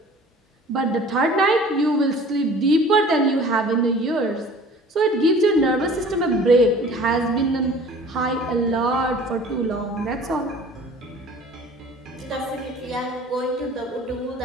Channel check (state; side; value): normal; both; correlation 0.47